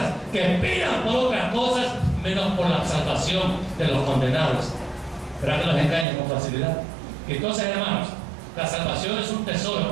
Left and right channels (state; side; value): drops out; left; at 6.1 s